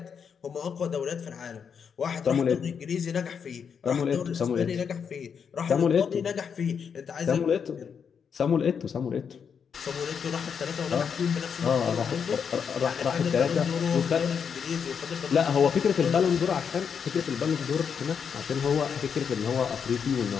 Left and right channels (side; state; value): right; quieter; 6.8 dB